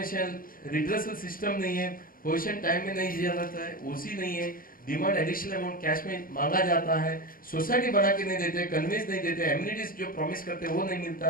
redressal system नहीं है, पोजीशन टाइम में नहीं दिया जाता है, ओसी नहीं है, डिमांड एडिशनल अमाउंट कैश में मांगा जाता है, सोसाइटी बना के नहीं देते, कन्वेंस नहीं देते, एम्यूनिटीज जो प्रॉमिस करते हैं वो नहीं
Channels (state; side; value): late; right; 0.41 ms